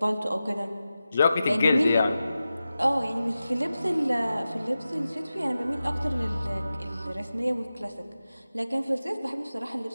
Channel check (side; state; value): both; inverted; correlation -0.93